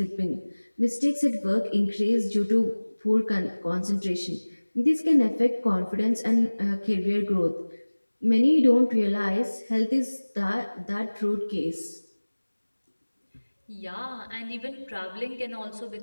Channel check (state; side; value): inverted; both; correlation -1.00